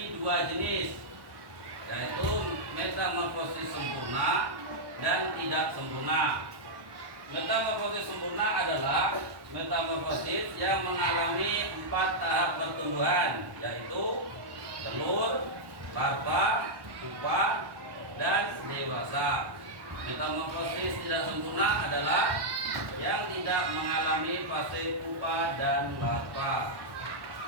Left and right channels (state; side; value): late; left; 1.1 ms